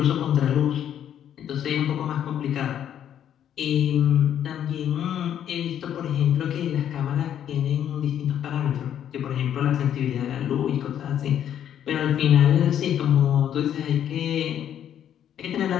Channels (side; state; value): right; quieter; 10.0 dB